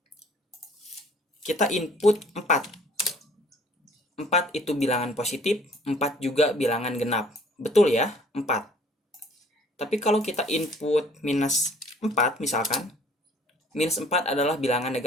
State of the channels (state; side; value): normal; both; correlation 0.55